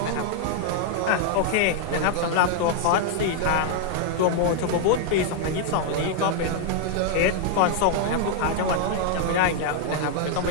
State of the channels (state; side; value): different; both; correlation 0.00